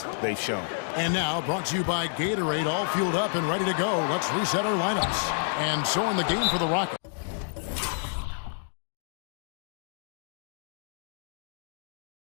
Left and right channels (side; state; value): right; silent; digital silence